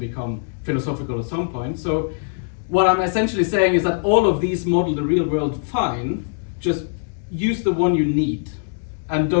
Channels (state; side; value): silent; right; digital silence